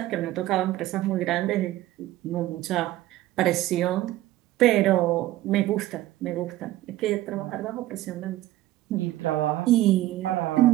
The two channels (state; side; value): quieter; left; 15.5 dB